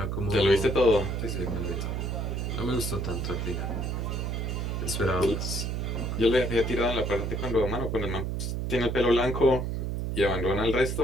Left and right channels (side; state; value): right; noise; hum, 2 dB below the sound